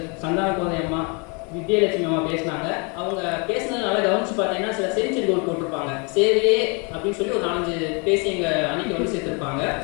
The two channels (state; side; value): quieter; right; 33.0 dB